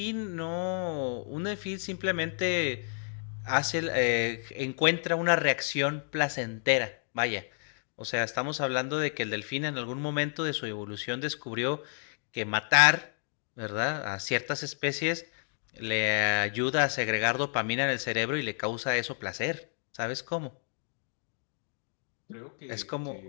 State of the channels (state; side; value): silent; right; 57 dB below the other